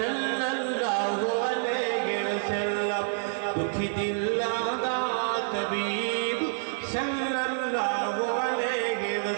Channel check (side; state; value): left; silent; 59 dB below the other